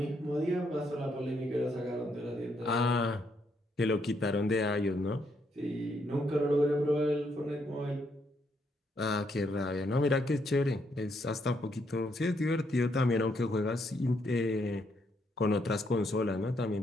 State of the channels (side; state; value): both; normal; correlation 0.75